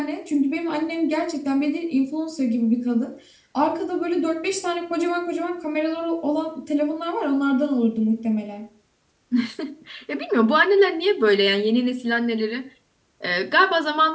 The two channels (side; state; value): both; identical; correlation 1.00